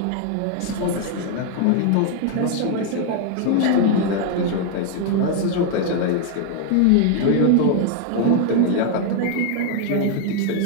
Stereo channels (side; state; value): both; different; correlation 0.00